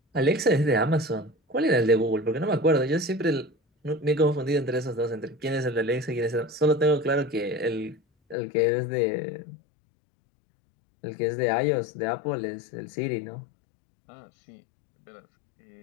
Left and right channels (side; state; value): right; drops out; at 8.3 s